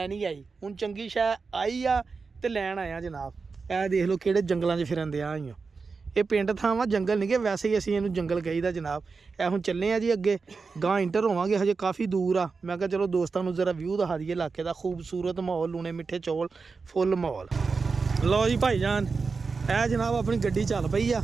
नहीं आई। हुण चंगी शै आई आ ते लैण आया जनाब। ए देख लो किहड़े जंगलां 'च फिरन दियां आईयां। ये पिंड थां वा, जंगल नहीं गे, वैसे ही असीं इहनूं जंगल कहीदा जनाब। ए हुण चले आ जी अगे, गां इंटर होवांगे, हजे काफ़ी दूर आ। मैं कहा चलो दोस्तां नूं जरा व्यू दिखा दईए इलाके दा। खूबसूरत माहौल, लूने मिठे चौल, फुल माहौल। लो जी भाईजान, ए जनाब अपनी गड्डी चल पई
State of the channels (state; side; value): quieter; left; 4.6 dB